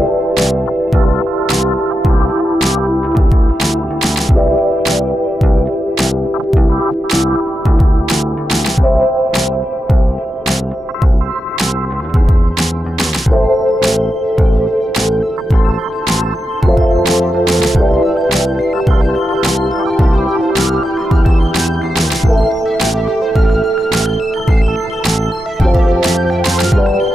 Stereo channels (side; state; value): both; normal; correlation 0.89